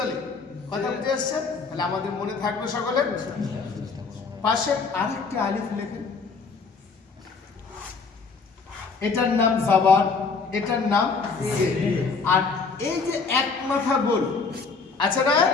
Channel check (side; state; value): right; quieter; 4.7 dB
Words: কথা বুঝে এসছে? তাহলে আমাদের মনে থাকবে সকলে। পাশে আরেকটি আলিফ লেখেন, এটার নাম জাবার, এটার নাম জের। আর এই যে এক মাথা গোল আছে না,